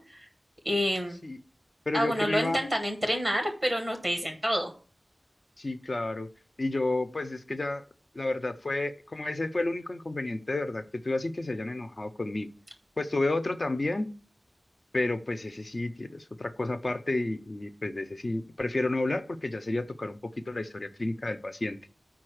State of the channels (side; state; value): both; normal; correlation 0.97